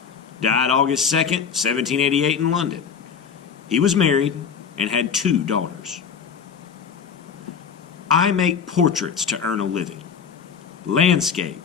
Died August 2nd, 1788 in London. He was married and had 2 daughters. I make portraits to earn a living,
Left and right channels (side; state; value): right; quieter; 6.9 dB